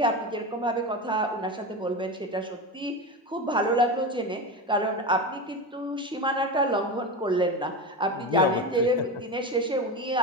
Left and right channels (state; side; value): normal; both; correlation 0.21